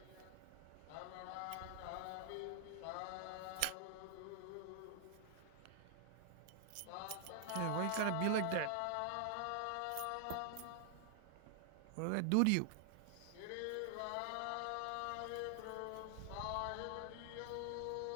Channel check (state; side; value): different; both; correlation 0.00